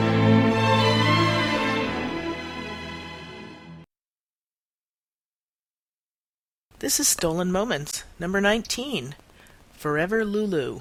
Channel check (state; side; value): identical; both; correlation 1.00